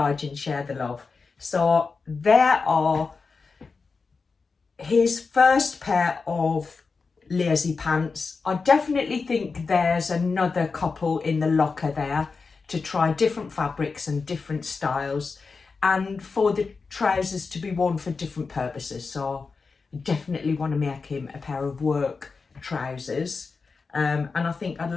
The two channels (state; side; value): quieter; right; 4.6 dB